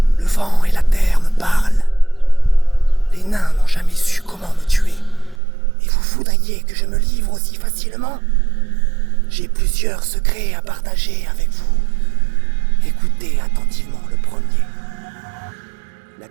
vent et la terre me parlent. Les nains n'ont jamais su comment me tuer. Et vous voudriez que je me livre aussi facilement? J'ai plusieurs secrets à partager avec vous. Écoutez attentivement le premier. La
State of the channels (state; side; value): drops out; left; at 5.4 s